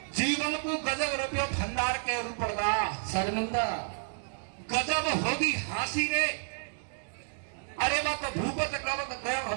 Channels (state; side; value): silent; left; digital silence